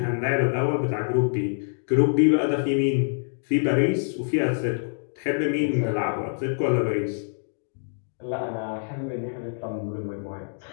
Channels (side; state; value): right; silent; digital silence